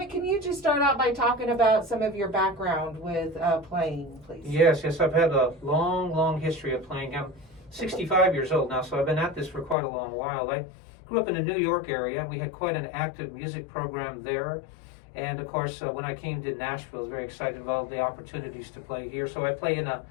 can you just start out by talking about some of your background with playing, please? Yes, I've had a long history of playing. I'm 65 years old now, so I've been at this for quite a long while. I grew up in the New York area. We had quite an active music program there. And of course, when I came to Nashville, I was very excited about all the opportunities to play here. So I play in a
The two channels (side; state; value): right; drops out; at 9.8 s